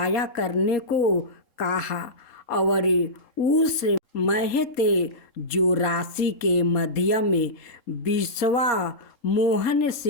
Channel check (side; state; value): right; late; 3.7 ms